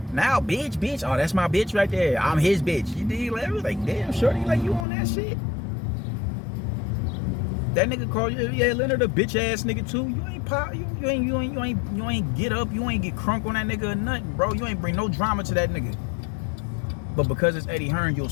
Now, bitch, oh, that's my bitch right there. I'm his bitch. You dig? Like, damn, shorty, like, you on that shit? That nigga called you, yeah, Leonard, a bitch ass nigga too. You ain't pop, you ain't get up, you ain't get crunk on that nigga or nothing, bro. You ain't bring no drama to that nigga. But because it's Eddie Hearn, you'll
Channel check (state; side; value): drops out; right; at 4.9 s